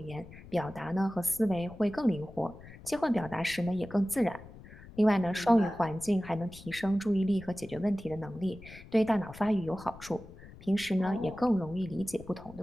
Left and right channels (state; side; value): noise; left; rumble, 18 dB below the sound